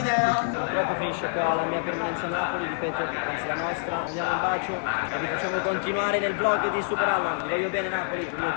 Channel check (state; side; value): silent; right; digital silence